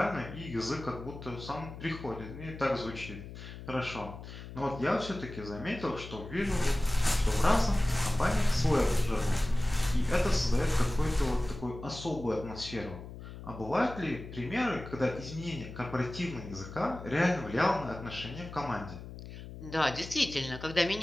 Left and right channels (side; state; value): left; noise; hum, 12 dB below the sound